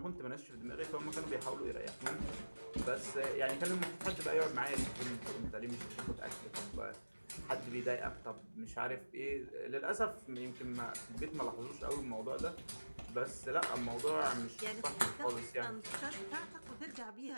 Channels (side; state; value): both; inverted; correlation -1.00